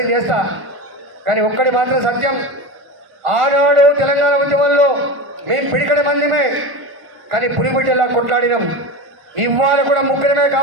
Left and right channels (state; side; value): late; left; 1.5 ms